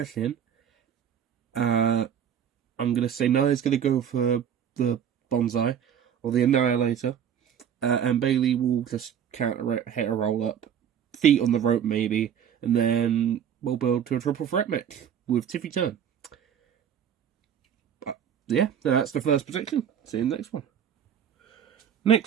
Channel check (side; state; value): left; quieter; 8.8 dB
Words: in. I'm going to say Nia's going to go for the Bonsai or the Annihilator, and Bayley will just counter it, hit a roll up, feet on the rope maybe, and then we'll build to a triple threat match with Tiffy Turn. Yeah, that's the first prediction. See you in the next one.